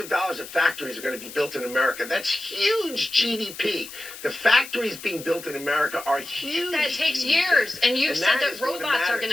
dollars of factories are going to be built in America. That's huge GDP. The factories being built in America are huge. That takes years. And you've said that robots are going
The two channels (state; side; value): noise; left; hiss, 14 dB below the sound